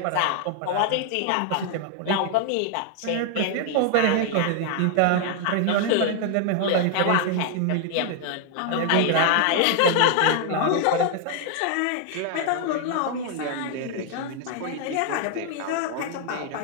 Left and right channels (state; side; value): different; both; correlation 0.00